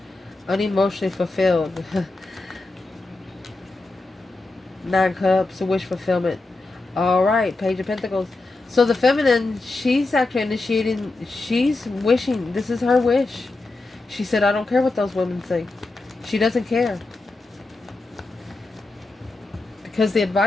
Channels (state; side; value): quieter; right; 3.2 dB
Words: Unemotionally fulfilled. 9 Cups, a wish fulfillment. Alright, Page of Pentacles. So the feminine, she's actually initiating, she's wishing, this is her wish. She said, I don't care what those women think. She doesn't care. Because the